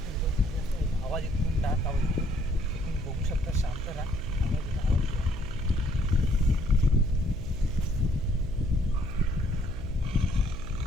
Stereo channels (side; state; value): right; noise; hum, 11 dB below the sound